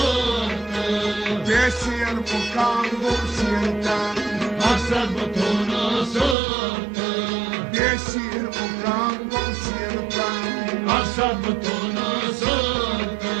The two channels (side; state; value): left; drops out; at 6.4 s